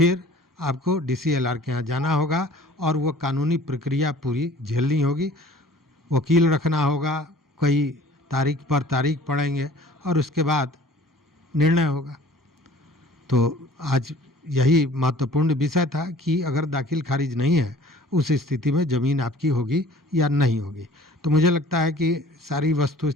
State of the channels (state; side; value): normal; both; correlation 0.50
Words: आपको DCLR के यहाँ जाना होगा और वो कानूनी प्रक्रिया पूरी झेलनी होगी। वकील रखना होगा, कई तारीख पर तारीख पड़ेंगे और उसके बाद निर्णय होगा। तो आज यही महत्वपूर्ण विषय था कि अगर दाखिल खारिज नहीं है उस स्थिति में ज़मीन आपकी होगी या नहीं होगी। तो मुझे लगता है कि सारी वस्तु